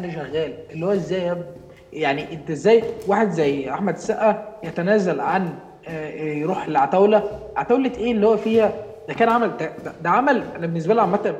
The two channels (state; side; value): identical; both; correlation 1.00